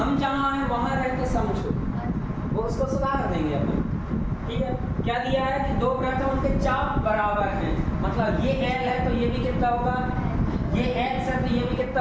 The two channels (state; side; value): identical; both; correlation 1.00